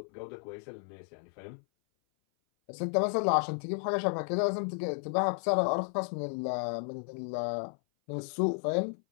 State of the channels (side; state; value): right; silent; 56 dB below the other